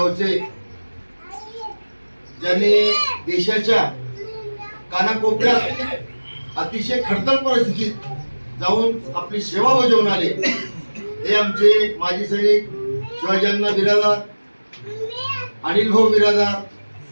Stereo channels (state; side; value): inverted; both; correlation -1.00